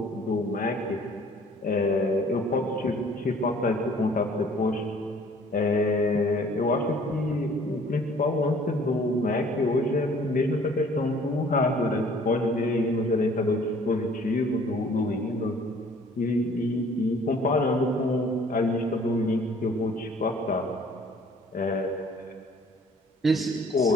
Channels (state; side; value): normal; both; correlation 0.55